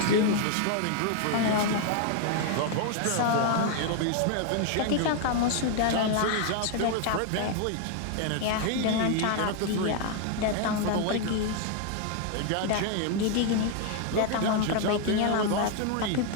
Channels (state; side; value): different; both; correlation 0.00